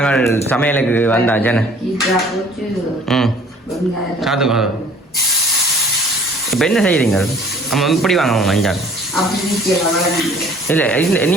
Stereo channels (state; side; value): normal; both; correlation 0.53